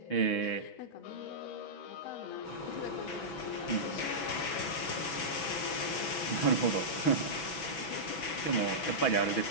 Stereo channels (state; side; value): late; right; 6.1 ms